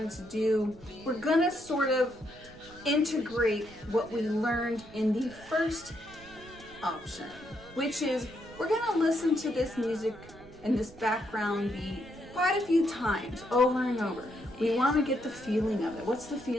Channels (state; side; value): noise; right; rumble, 22 dB below the sound